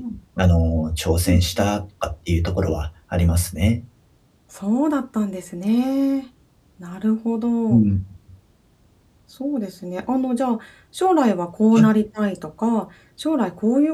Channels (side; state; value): both; identical; correlation 1.00